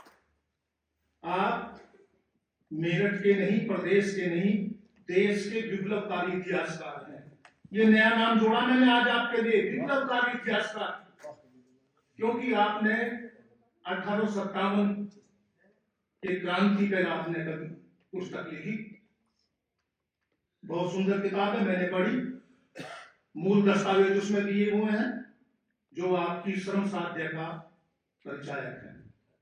आप मेरठ के नहीं, प्रदेश के नहीं, देश के विप्लवकारी इतिहासकार हैं। ये नया नाम जोड़ा मैंने आज आपके लिए, विप्लवकारी इतिहासकार, क्योंकि आपने 1857 के क्रांति पर आपने कभी पुस्तक लिखी, बहुत सुंदर किताब है, मैंने पढ़ी। मूल दस्तावेज उसमें दिए हुए हैं जो आपकी श्रम साध्य का परिचायक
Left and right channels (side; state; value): both; identical; correlation 1.00